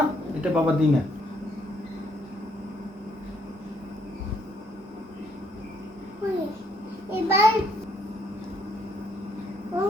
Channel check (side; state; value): both; normal; correlation 0.69